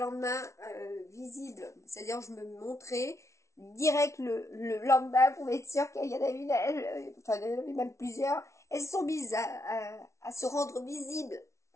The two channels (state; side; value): late; right; 0.14 ms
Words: visibles. C'est-à-dire je me montrais direct le lendemain pour être sûr qu'il y en a une, enfin il y en avait même plusieurs. Elles sont mises à se rendre visibles.